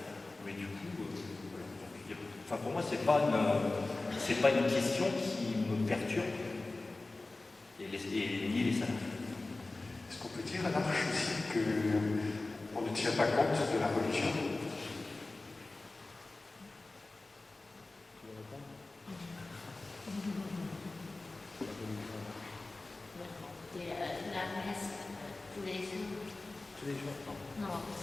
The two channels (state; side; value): quieter; right; 3.2 dB